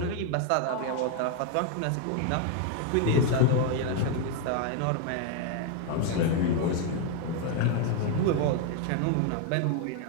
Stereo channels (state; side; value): different; both; correlation 0.01